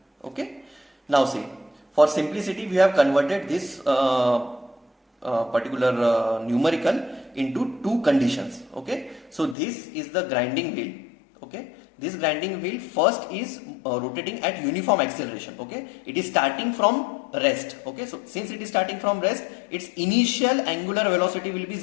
Okay, now see, for simplicity we have converted this particular numerical into two conditions. Okay, so this is the grinding wheel. Okay, this grinding wheel first is rotating at uniform acceleration. Okay, it is starting from rest. Okay, so since it is starting from rest, its initial angular velocity will be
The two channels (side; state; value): right; drops out; at 9.6 s